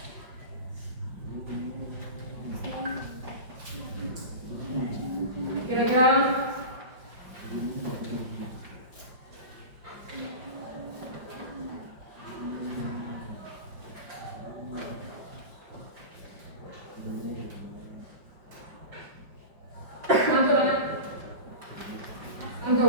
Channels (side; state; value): left; late; 5.3 ms